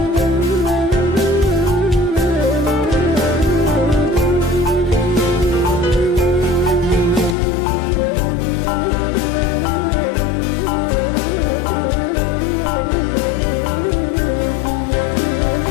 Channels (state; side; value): drops out; right; at 7.4 s